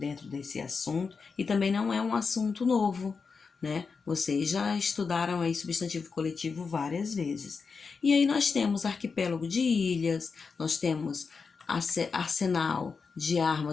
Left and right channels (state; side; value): quieter; right; 5.1 dB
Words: desse assunto. E também não é um assunto novo, né? Vocês já estudaram aí substantivo coletivo várias vezes. E aí nós temos arquipélago de ilhas, nós temos arsenal de